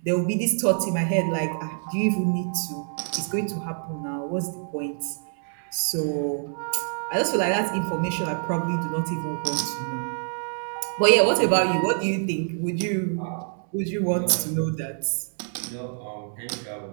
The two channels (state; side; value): silent; left; 58 dB below the other